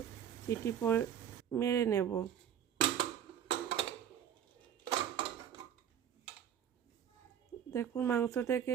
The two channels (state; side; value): quieter; left; 9.4 dB